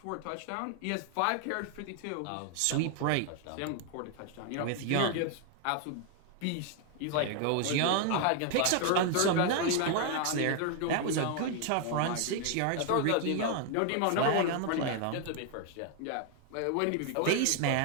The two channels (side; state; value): both; different; correlation 0.00